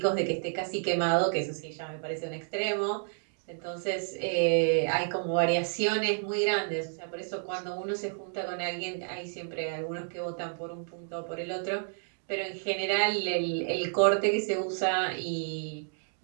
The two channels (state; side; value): silent; left; digital silence